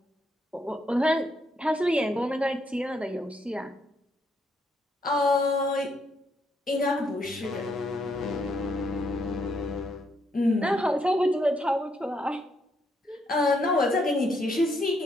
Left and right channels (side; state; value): both; normal; correlation 0.74